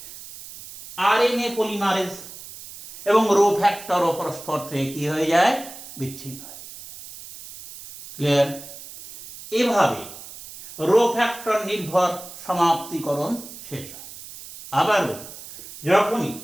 আরএনএ পলিমারেজ এবং রো ফ্যাক্টর পরস্পর থেকে কি হয়ে যায়, বিচ্ছিন্ন হয়। ক্লিয়ার? এভাবে রো ফ্যাক্টর নির্ভর সমাপ্তিকরণ শেষ হয়। আবারও যখনই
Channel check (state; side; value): noise; right; hiss, 15 dB below the sound